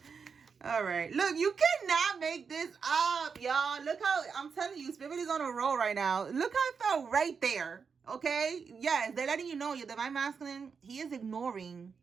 All right, look, you cannot make this up, y'all. Look how, I'm telling you, Spirit is on a roll right now. Look how it felt right there, okay? Yes, they're letting you know your divine masculine, he is ignoring,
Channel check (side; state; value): left; quieter; 5.8 dB